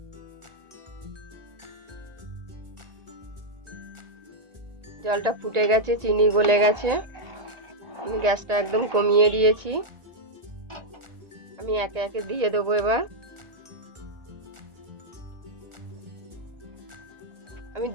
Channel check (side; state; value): left; late; 1.9 ms